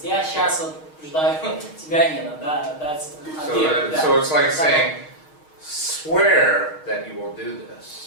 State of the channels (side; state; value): right; late; 6.4 ms